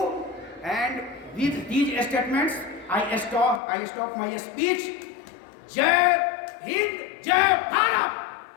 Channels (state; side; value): drops out; right; at 3.6 s